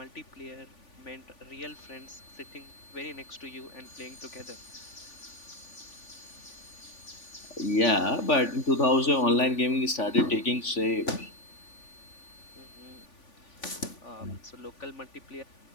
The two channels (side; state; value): right; late; 3.5 ms